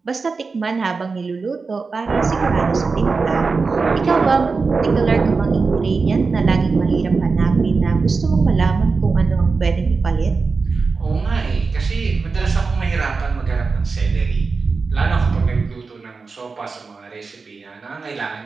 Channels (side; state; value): left; quieter; 4.4 dB